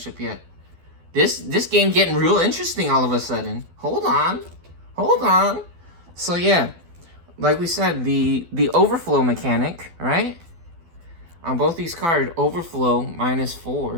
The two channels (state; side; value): late; left; 12 ms